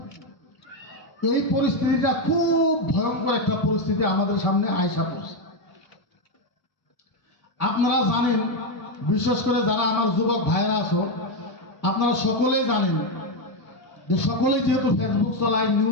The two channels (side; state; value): right; late; 1.7 ms